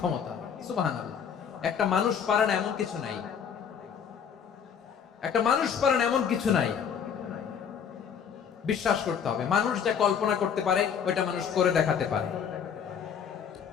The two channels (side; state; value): right; quieter; 7.5 dB